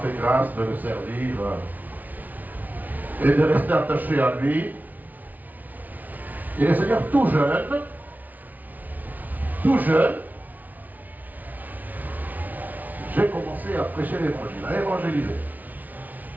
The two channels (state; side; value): late; left; 0.078 ms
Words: grâce de le servir et de rester attaché à lui. Et le Seigneur tout jeune, j'ai commencé à prêcher l'évangile, à évangéliser.